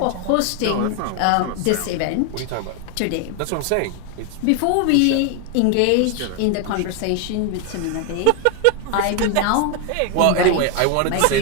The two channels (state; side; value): different; both; correlation 0.01